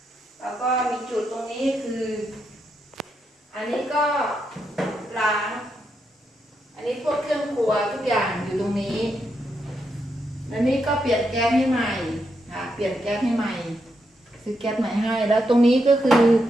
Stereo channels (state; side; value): normal; both; correlation 0.82